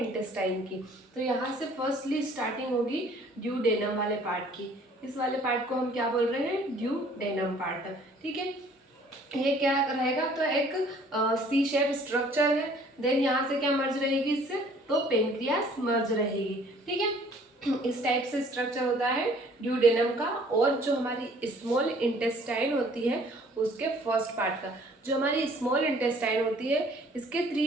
की। तो यहाँ से फर्स्टली स्टार्टिंग होगी ड्यूडेनम वाले पार्ट की। इस वाले पार्ट को हम क्या बोल रहे हैं, ड्यूडेनम पार्ट। ठीक है, ये क्या रहेगा, तो एक सी शेप स्ट्रक्चर है। देन यहाँ से क्या मर्ज रहेगी इससे, तो पेनक्रियास मर्ज रहेगी। ठीक है, इस टाइप से स्ट्रक्चर होता है ड्यूडेनम का। और जो हमारी स्मॉल इंटेस्टाइन होती है उसके फर्स्ट पार्ट का, जो हमारी स्मॉल इंटेस्टाइन होती है इसके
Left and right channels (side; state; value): both; normal; correlation 0.56